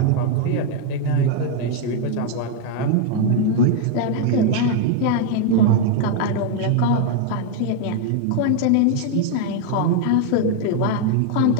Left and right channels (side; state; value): both; different; correlation 0.00